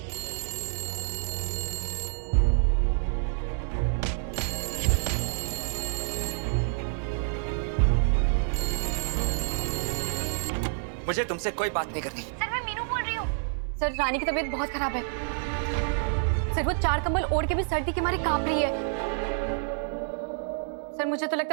मुझे तुमसे कोई बात नहीं करनी। सर मैं मीनू बोल रही हूँ। सर रानी की तबीयत बहुत खराब है। सर वो 4 कंबल ओढ़ के भी सर्दी के मारे कांप रही है। सर मुझे तो लगता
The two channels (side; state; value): left; silent; digital silence